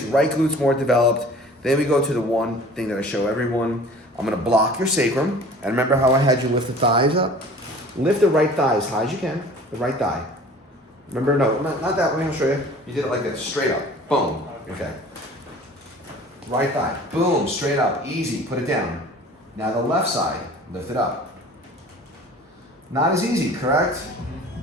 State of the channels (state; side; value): normal; both; correlation 0.45